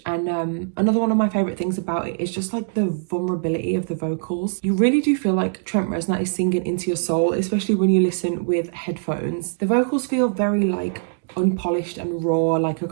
And another one of my favorite things about it is just like the vulnerability of the vocals. You really do feel like Trent Reznor is singing into your soul, especially when you listen with headphones. The vocals feel very like unpolished and raw, like a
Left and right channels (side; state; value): left; silent; digital silence